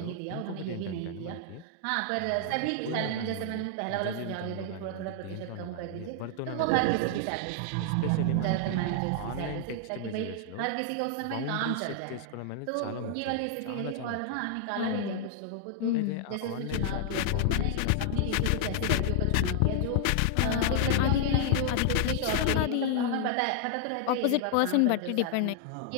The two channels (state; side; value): different; both; correlation -0.01